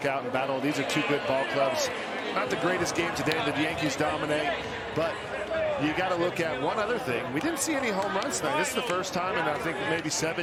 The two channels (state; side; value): identical; both; correlation 1.00